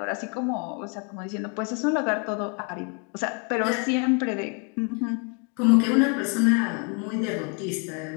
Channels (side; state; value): right; quieter; 35.8 dB